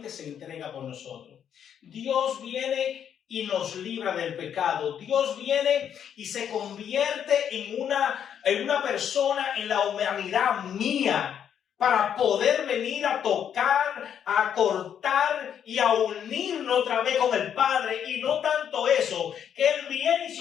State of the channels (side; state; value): right; quieter; 8.8 dB